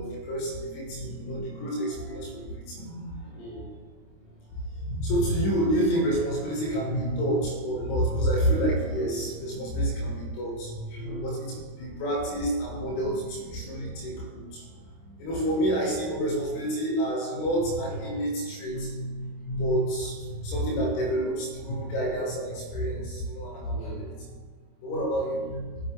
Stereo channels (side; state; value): right; late; 26 ms